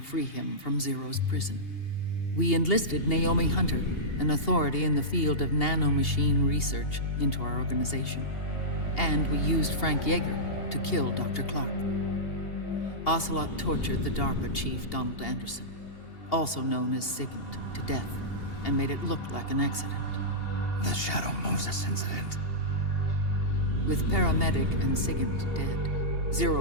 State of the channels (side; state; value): right; late; 2.8 ms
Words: free him from Zero's prison. We enlisted Naomi Hunter, an authority in the field of nanomachine research, into our organization. And we used Frank Yeager to kill Dr. Clark. Ocelot tortured the DARPA chief, Donald Anderson, also known as Sigint, to death, and made it look like an accident. The Shadow Moses incident. With Paramedic and Sigint dead,